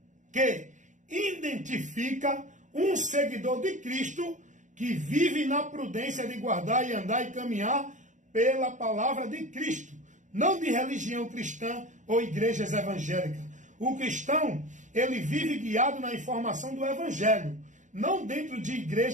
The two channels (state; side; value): late; left; 0.36 ms